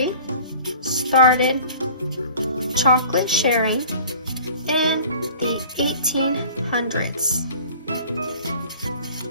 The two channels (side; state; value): both; inverted; correlation -0.45